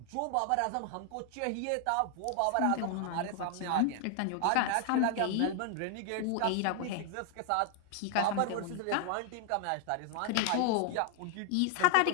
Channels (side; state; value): both; different; correlation 0.00